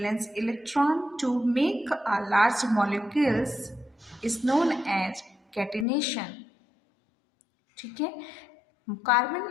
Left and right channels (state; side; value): drops out; right; at 5.9 s